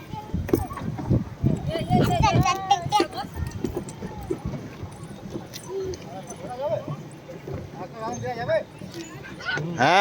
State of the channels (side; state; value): both; identical; correlation 1.00